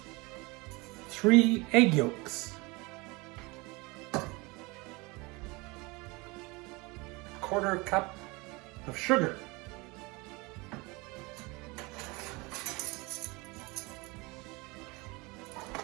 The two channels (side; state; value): left; quieter; 25.3 dB